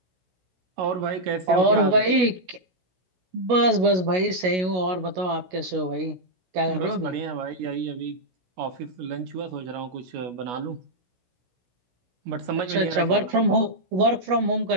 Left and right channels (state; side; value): late; left; 16 ms